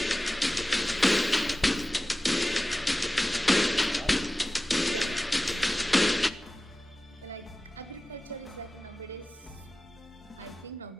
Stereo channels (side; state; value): both; normal; correlation 0.96